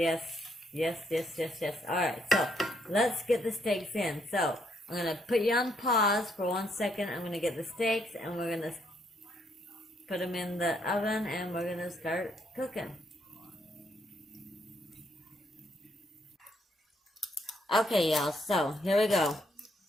Alright, so let's get the steaks in. So I'm going to put you on pause for 1 second. I'm going to get the steaks and we're going to put them in the oven and we're going to start cooking. Okay, y'all, so here we go.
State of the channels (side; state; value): both; normal; correlation 0.73